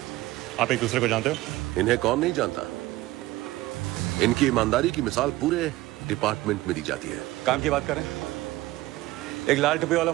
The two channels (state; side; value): quieter; left; 17.7 dB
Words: आप एक दूसरे को जानते हो? इन्हें कौन नहीं जानता। इनकी ईमानदारी की मिसाल पूरे डिपार्टमेंट में दी जाती है। काम की बात करें, एक लाल टोपी वाला